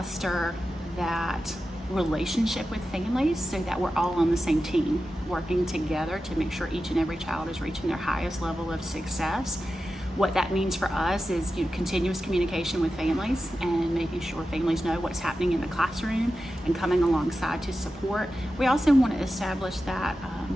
that relationship with families so that we're all on the same team, working together to make sure each and every child is reaching their highest level of success. What that means for us is continuous communication with families and making sure families know what's happening in the classroom and coming alongside to support. We also want to establish that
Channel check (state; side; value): normal; both; correlation 0.92